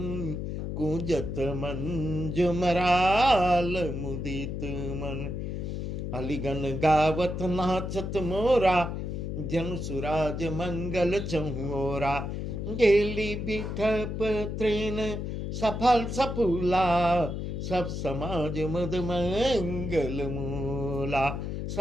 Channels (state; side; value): noise; left; hum, 4 dB below the sound